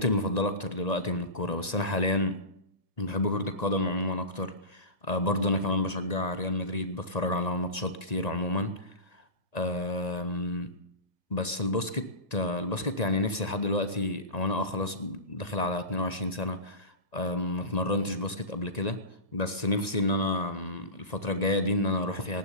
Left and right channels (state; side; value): late; right; 1.9 ms